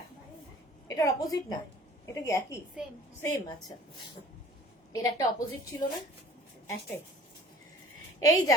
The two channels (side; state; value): both; normal; correlation 0.48